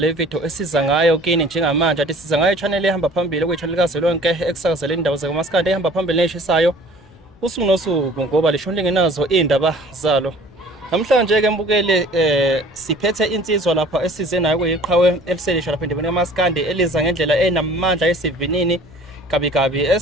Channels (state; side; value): normal; both; correlation 0.49